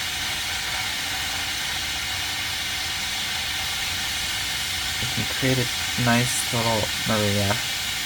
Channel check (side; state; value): both; identical; correlation 1.00